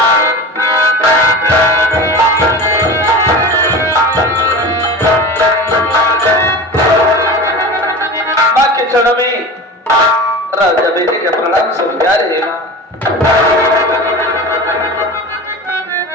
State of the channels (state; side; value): normal; both; correlation 0.32